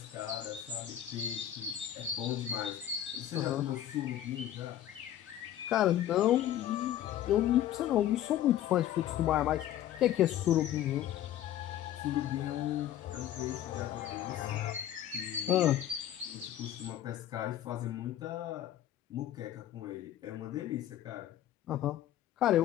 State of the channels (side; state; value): right; quieter; 11.8 dB